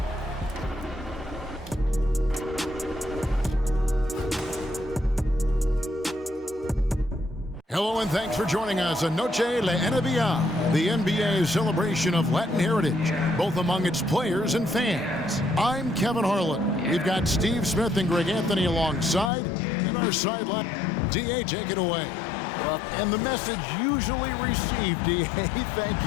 Hello and thanks for joining us on Noche La NBA, the NBA's celebration of Latin heritage, both among its players and fans. I'm Kevin Harlan. We've got Steve Smith and Greg Anthony alongside, and our sideline. DA, take it away. Well, and the message usually received, DA, thank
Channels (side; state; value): right; drops out; at 19.3 s